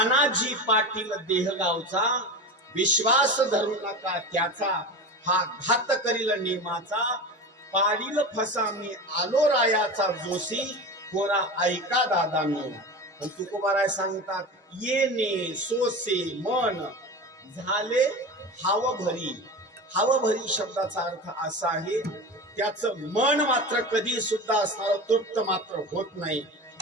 पाटील देह गावचा विश्वास धरू नका त्याचा, हा घात करील नेमाचा पाडील फसा मी आलो रायाचा जोशी पोरा ऐका दादांनो. पण तुकोबाराय सांगतात येणे सोसे मन झाले हावभरी. हावभरी शब्दाचा अर्थ असा आहे त्याचं मन मात्र कधी सुद्धा असणार तृप्त मात्र होत नाही.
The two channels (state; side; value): normal; both; correlation 0.28